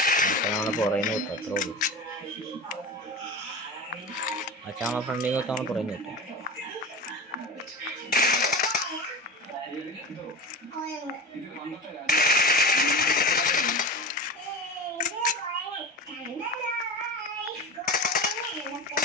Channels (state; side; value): normal; both; correlation 0.28